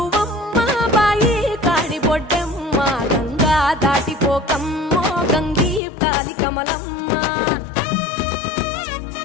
బాయి కాడి బొడ్డమ్మ, గంగా దాటిపోకమ్మో గంగీతాలి కమలమ్మ.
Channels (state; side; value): drops out; right; at 5.8 s